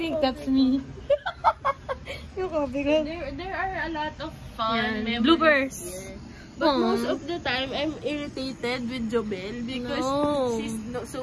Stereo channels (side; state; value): both; identical; correlation 1.00